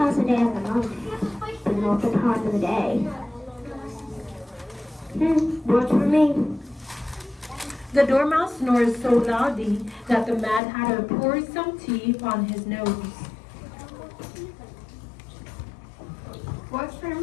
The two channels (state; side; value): drops out; right; at 10.6 s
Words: the day of the month, but not the time of the day. Works for me. The dormouse snores so loudly that the Mad Hatter pours some tea on his nose. Works for